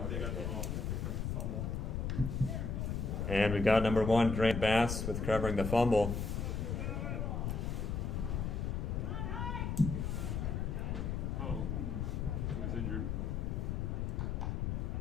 They got the ball. They picked up the fumble. And we've got number 1, Grant Bass with covering the fumble. Oh, he was injured.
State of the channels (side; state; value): left; noise; rumble, 1 dB below the sound